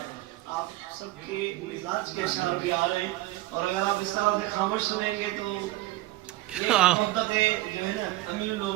آپ سب کے مزاج کے اشعار بھی آ رہے ہیں، اور اگر آپ اس طرح سے خاموش سنیں گے تو یہ مدت جو ہے نا امیر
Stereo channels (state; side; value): quieter; left; 17.3 dB